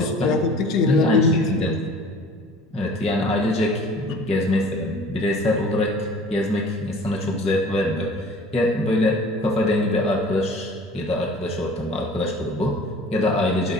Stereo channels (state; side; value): normal; both; correlation 0.46